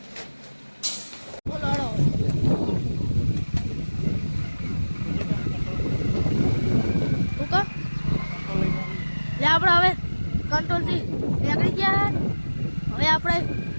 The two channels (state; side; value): inverted; both; correlation -1.00